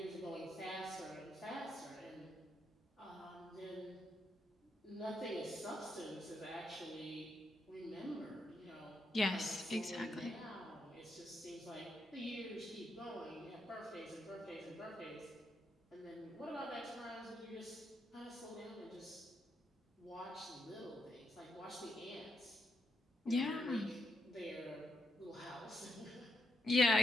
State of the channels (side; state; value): both; normal; correlation 0.79